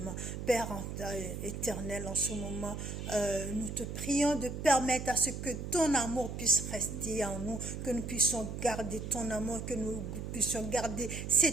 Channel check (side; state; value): right; noise; hum, 6 dB below the sound